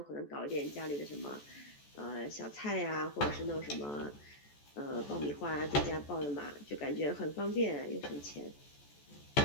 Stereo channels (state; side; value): late; right; 14 ms